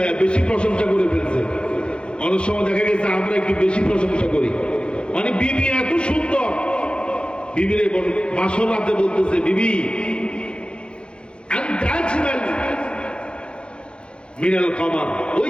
বেশি প্রশংসা করে ফেলছে। অনেক সময় দেখা গেছে আমরা একটু বেশি প্রশংসা করি, মানে বিবি এত সুন্দর, বিবিরে বাসর রাতে বলতেছে বিবি মিনাল কামার, ওই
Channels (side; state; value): right; late; 0.055 ms